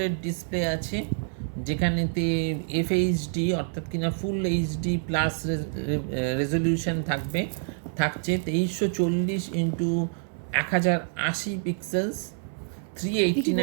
ডিসপ্লে আছে, যেখানেতে FHD অর্থাৎ কিনা ফুল এইচডি প্লাস রেজলিউশন থাকছে 2340x1080 পিক্সেলস,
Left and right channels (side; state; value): left; silent; 60 dB below the other